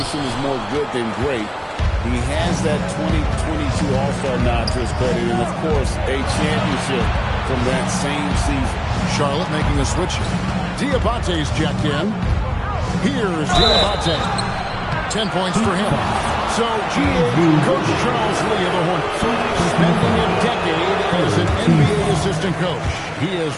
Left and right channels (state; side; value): identical; both; correlation 1.00